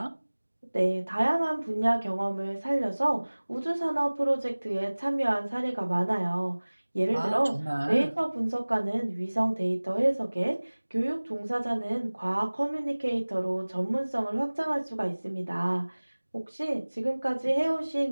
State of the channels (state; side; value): inverted; both; correlation -1.00